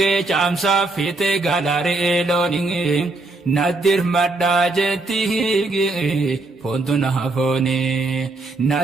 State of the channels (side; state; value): left; quieter; 3.2 dB